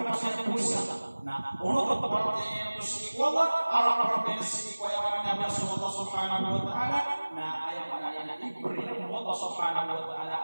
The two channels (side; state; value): both; inverted; correlation -1.00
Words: pasal puasa. Nah, untuk perbuatan yang bersikwala, arah yang sikwala yang Allah Subhanahu wa taala. Nah, ayat yang diberi Allah Subhanahu wa taala